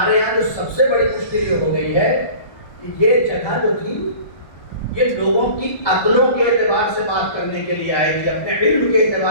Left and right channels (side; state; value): right; late; 1.3 ms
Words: یہاں جو سب سے بڑی مشکل یہ ہو گئی ہے کہ یہ جگہ جو تھی یہ لوگوں کی عقلوں کے اعتبار سے بات کرنے کے لیے آئی تھی، اپنے علم کے